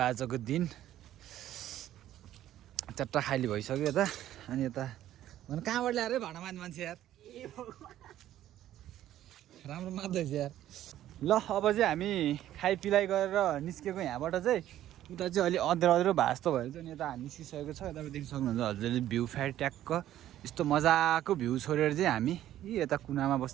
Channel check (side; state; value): left; quieter; 12.7 dB